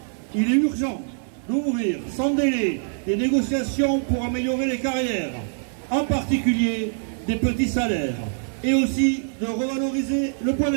Il est urgent d'ouvrir sans délai des négociations pour améliorer les carrières, en particulier des petits salaires, et aussi de revaloriser le point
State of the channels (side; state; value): left; silent; digital silence